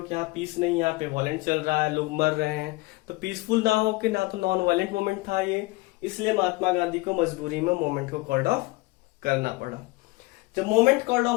कि यहाँ पीस नहीं, यहाँ पे वॉयलेंट चल रहा है, लोग मर रहे हैं। तो पीसफुल ना हो कि ना तो नॉन वॉयलेंट मूवमेंट था ये, इसलिए महात्मा गांधी को मजबूरी में मूवमेंट को कॉल्ड ऑफ करना पड़ा। जब मूवमेंट कॉल्ड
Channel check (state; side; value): quieter; right; 22.6 dB